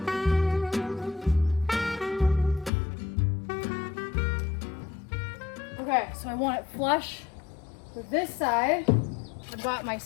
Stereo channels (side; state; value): right; drops out; at 2.7 s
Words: Okay, so I want it flush with this side. I've got my